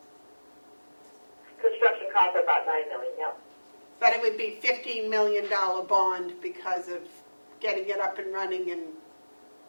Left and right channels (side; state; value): both; inverted; correlation -1.00